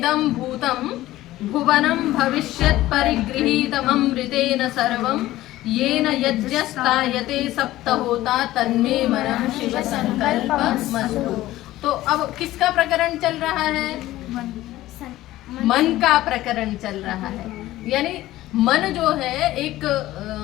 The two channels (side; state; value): right; quieter; 15.8 dB